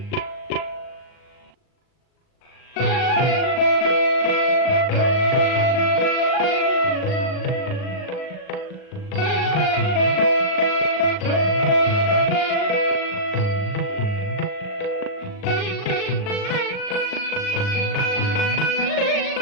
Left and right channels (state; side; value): late; right; 39 ms